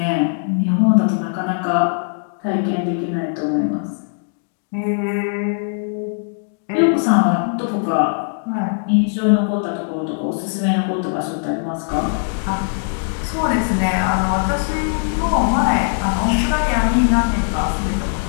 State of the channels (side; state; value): right; silent; digital silence